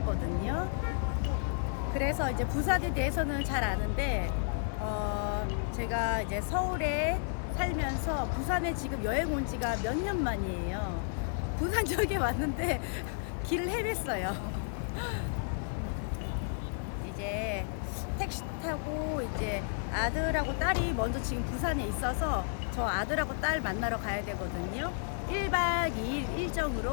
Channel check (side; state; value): right; silent; digital silence